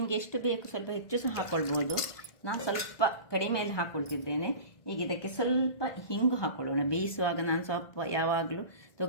ಎಷ್ಟು ಬೇಕು ಸ್ವಲ್ಪ ಹೆಚ್ಚು ಸಹ ಹಾಕೊಳ್ಬೋದು. ನಾನು ಸ್ವಲ್ಪ ಕಡಿಮೆಯಲ್ಲಿ ಹಾಕೊಳ್ತಿದ್ದೇನೆ. ಈಗ ಇದಕ್ಕೆ ಸ್ವಲ್ಪ ಹಿಂಗು ಹಾಕೊಳ್ಳೋಣ. ಬೇಯಿಸುವಾಗ ನಾನು ಸ್ವಲ್ಪ ಯಾವಾಗಲೂ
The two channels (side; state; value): right; late; 1.2 ms